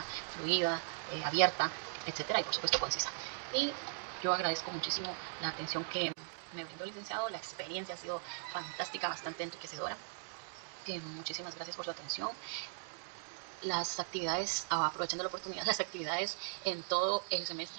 fluida, abierta, etcétera, y por supuesto concisa. Y yo agradezco muchísimo la atención que me brindó el licenciado. La experiencia ha sido fantástica, bastante enriquecedora. Muchísimas gracias por su atención. Las actividades, aprovechando la oportunidad, las actividades en todo el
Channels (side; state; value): left; silent; digital silence